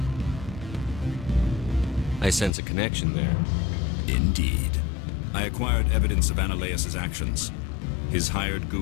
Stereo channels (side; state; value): right; drops out; at 2.5 s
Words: I sense a connection there. Indeed. I acquired evidence of Analaeus' actions. His hired